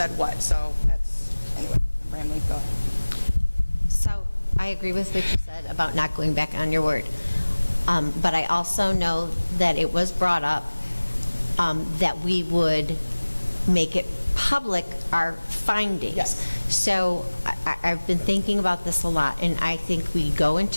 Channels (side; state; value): both; inverted; correlation -1.00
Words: what. So anyway, I'm rambling, go ahead. So I agree with what you said about not going back on your word. But I also know that it was brought up that we would make it public, our findings. Yes. So I've been thinking about this a lot, and I think we go